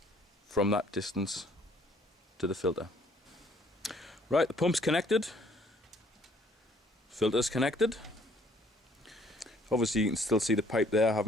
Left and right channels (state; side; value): normal; both; correlation 0.61